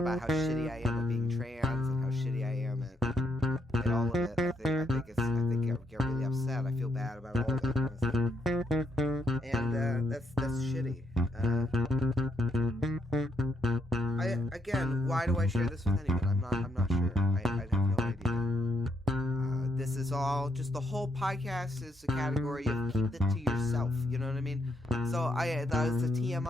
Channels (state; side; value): normal; both; correlation 0.77